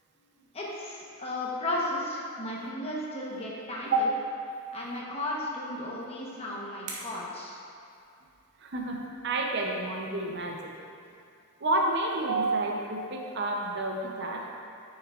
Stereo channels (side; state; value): both; normal; correlation -0.12